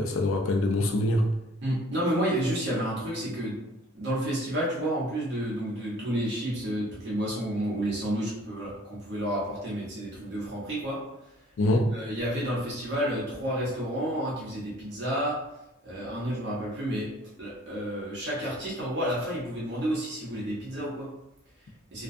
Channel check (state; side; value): normal; both; correlation 0.55